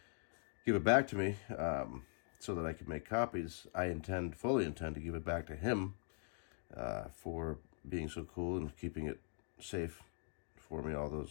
give it back to me so that I could make copies. I fully intend to give it back to him for being so cool and keeping it safe for me all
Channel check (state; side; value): silent; right; digital silence